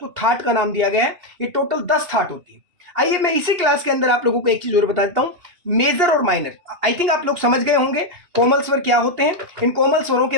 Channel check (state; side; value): late; left; 2.8 ms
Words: थाट का नाम दिया गया है। ये टोटल 10 थाट होती है। आइए मैं इसी क्लास के अंदर आप लोगों को एक चीज और बता देता हूं, मेजर और माइनर। आई थिंक आप लोग समझ गए होंगे कोमल स्वर क्या होते हैं। इन कोमल स्वरों